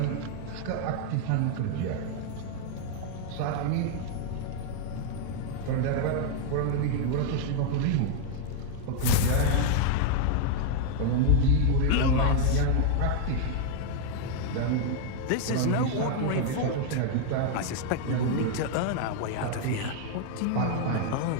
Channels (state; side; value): different; both; correlation 0.00